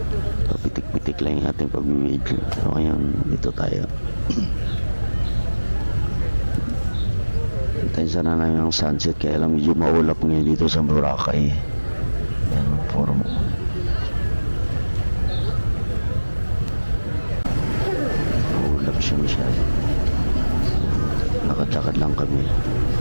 Pitik-pitik lang yung ating pag-video. So ngayon, dito tayo. Hintayin sana namin ang sunset kaya lang medyo maulap ngayon dito sa Boracay. Yan, forum. Maulap siya masyado. Lakad-lakad lang kami.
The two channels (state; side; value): inverted; both; correlation -1.00